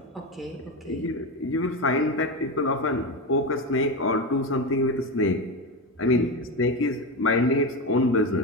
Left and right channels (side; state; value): both; normal; correlation 0.16